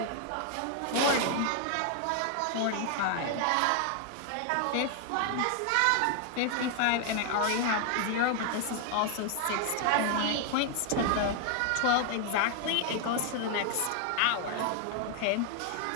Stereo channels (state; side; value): different; both; correlation 0.00